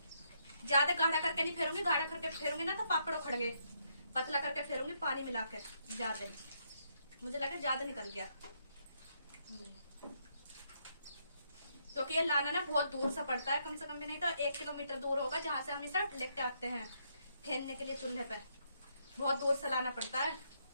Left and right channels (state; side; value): inverted; both; correlation -0.75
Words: ज्यादा गाढ़ा करके नहीं फेरूंगी, गाढ़ा करके फेरूंगी ना तो पापड़ उखड़ गए। पतला करके फेरूंगी पानी मिला के। ज्यादा, मुझे लगा ज्यादा निकल गया, क्योंकि ये लाना ना बहुत दूर से पड़ता है, कम से कम भी नहीं तो 1 किलोमीटर दूर होगा, जहां से हम इसे लेके आते हैं फेरने के लिए चूल्हे पे। बहुत दूर से लाना पड़ता है।